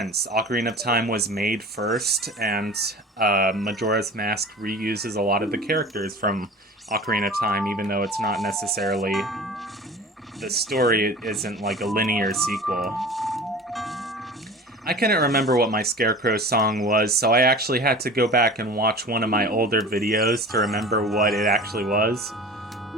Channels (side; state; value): both; normal; correlation 0.39